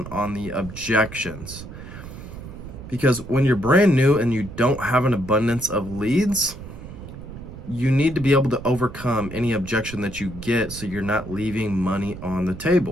on the objections. Because when you're brand new and you don't have an abundance of leads, you need to be able to overcome any objection that you get so you're not leaving money on the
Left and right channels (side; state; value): right; noise; rumble, 13 dB below the sound